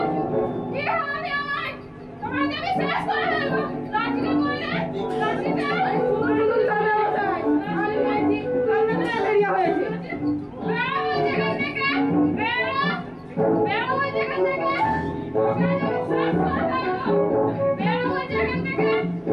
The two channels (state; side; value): identical; both; correlation 1.00